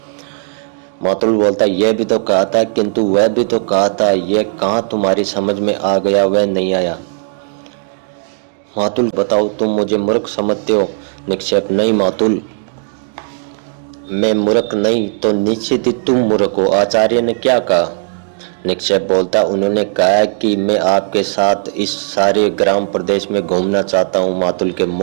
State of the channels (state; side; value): silent; left; digital silence